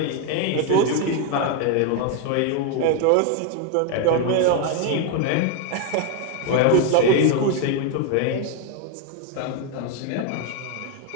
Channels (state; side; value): different; both; correlation 0.01